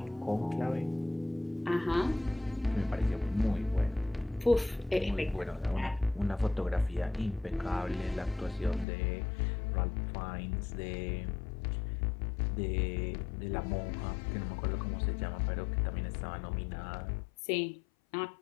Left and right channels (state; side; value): drops out; right; at 8.8 s